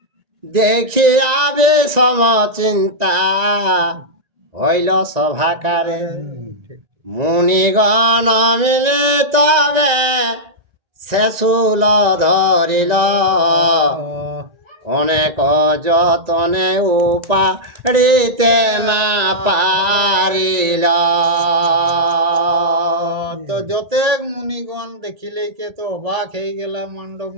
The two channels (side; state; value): left; late; 1.9 ms